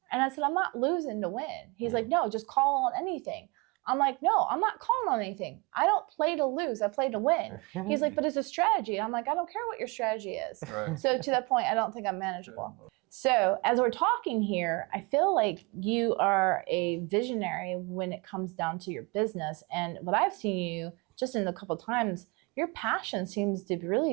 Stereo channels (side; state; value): left; quieter; 27.9 dB